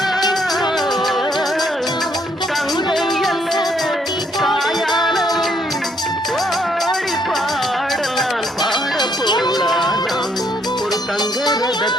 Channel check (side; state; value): both; normal; correlation 0.71